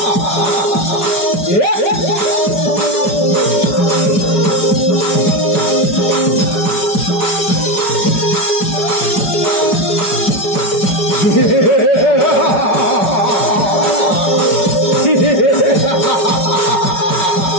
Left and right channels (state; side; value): late; right; 5.4 ms